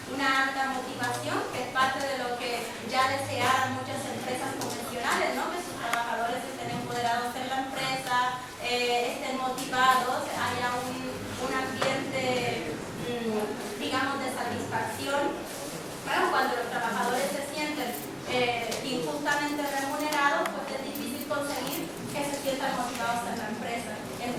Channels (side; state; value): both; identical; correlation 1.00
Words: una alta motivación, que es parte de lo que ya desearan muchas empresas convencionales, ¿no? Que sus trabajadores estén empoderados en la empresa, estén motivados, haya un ambiente, digamos, de satisfacción. Bueno, cuando los trabajadores se sienten injustamente remunerados, pues es difícil conseguir que se sientan motivados en la empresa.